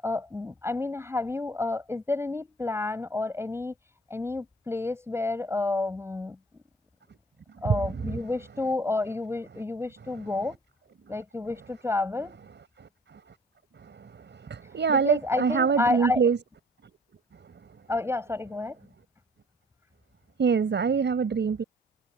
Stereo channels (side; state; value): both; normal; correlation 0.50